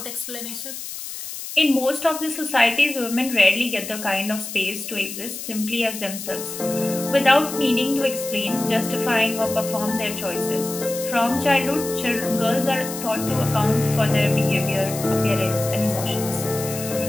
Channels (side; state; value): left; noise; hiss, 9 dB below the sound